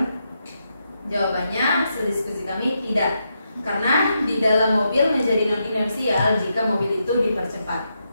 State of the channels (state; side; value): inverted; both; correlation -0.83